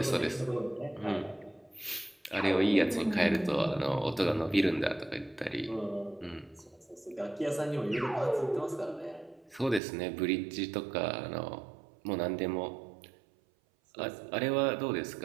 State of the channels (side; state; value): left; drops out; at 9.8 s